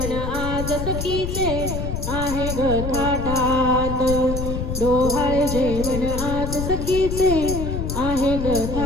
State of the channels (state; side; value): noise; left; rumble, 4 dB below the sound